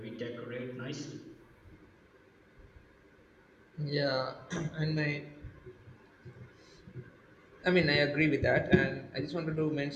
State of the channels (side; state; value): both; identical; correlation 1.00